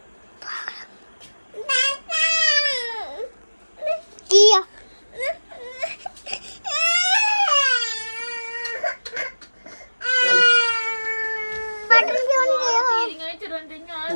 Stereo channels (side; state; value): both; inverted; correlation -1.00